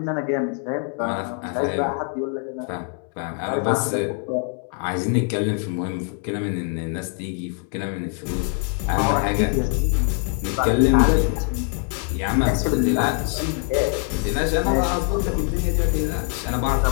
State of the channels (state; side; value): quieter; right; 39.9 dB